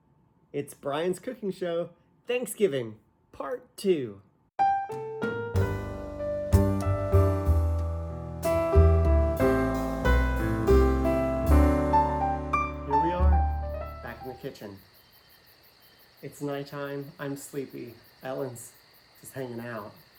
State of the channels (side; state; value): both; identical; correlation 1.00